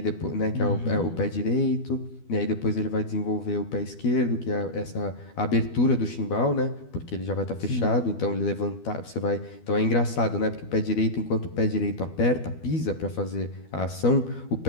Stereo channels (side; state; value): right; late; 12 ms